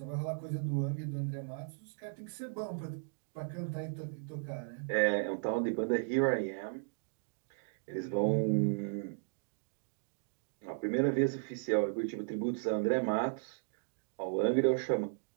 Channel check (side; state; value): left; silent; digital silence